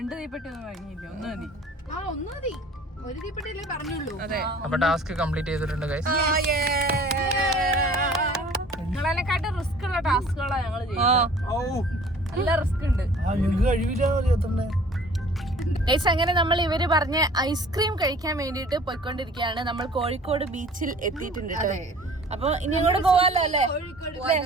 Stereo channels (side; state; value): both; normal; correlation 0.49